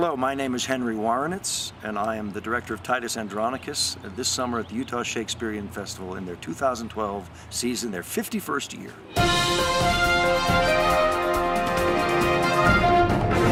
my name is Henry Woronicz, and I am the director of Titus Andronicus this summer at the Utah Shakespeare Festival in their 2012 season, their 51st year.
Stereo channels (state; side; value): identical; both; correlation 1.00